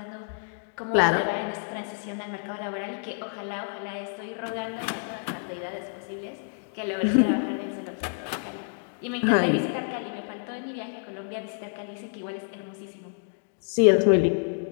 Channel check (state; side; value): silent; right; digital silence